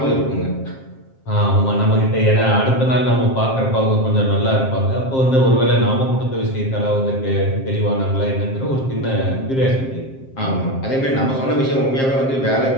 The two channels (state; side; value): late; right; 7.5 ms